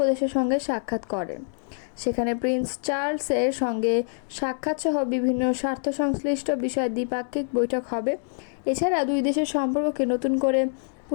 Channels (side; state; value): right; silent; digital silence